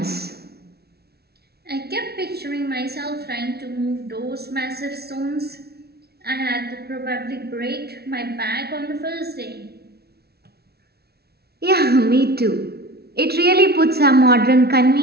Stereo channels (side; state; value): left; late; 0.46 ms